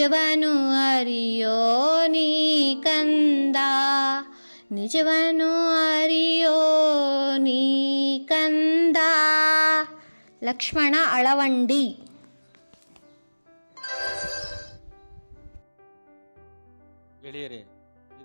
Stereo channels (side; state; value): both; inverted; correlation -1.00